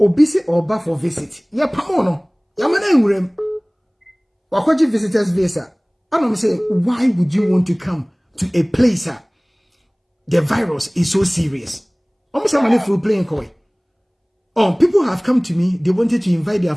or bar for visit. Ya pamono. Yamana urem. Wakwaji visitors visa. I don't say, why would you want to come to a place the virus is so serious? Almost somebody for playing coy. Oh, people have come to me. They wanted to invite their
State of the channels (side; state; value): both; identical; correlation 1.00